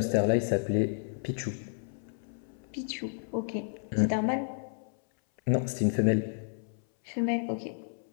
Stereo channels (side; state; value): right; silent; 57 dB below the other